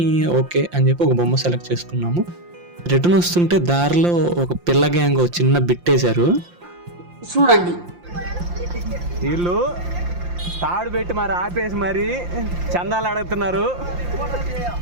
ఓకే అని చెప్పి ఒక బొమ్మ సెలెక్ట్ చేసుకున్నాము. రిటర్న్ వస్తుంటే దారిలో ఒక పిల్ల గ్యాంగ్ చిన్న బిట్టేశారు. చూడండి, వీళ్ళు తాడు పెట్టి మరి ఆపేసి మరి చందాలు అడుగుతున్నారు.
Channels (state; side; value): late; left; 5.7 ms